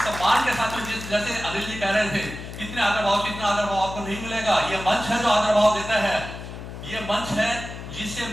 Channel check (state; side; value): noise; left; hum, 10 dB below the sound